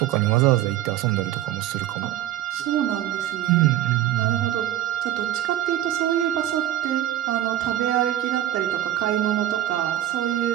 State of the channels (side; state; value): left; quieter; 12.7 dB